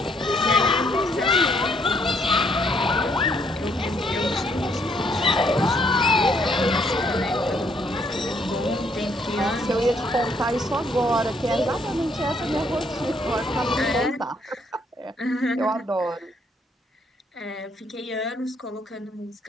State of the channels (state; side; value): normal; both; correlation 0.69